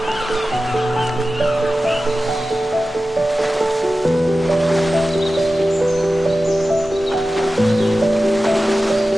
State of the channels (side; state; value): both; normal; correlation 0.94